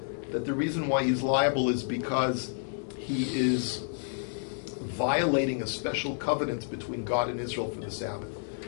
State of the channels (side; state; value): right; silent; digital silence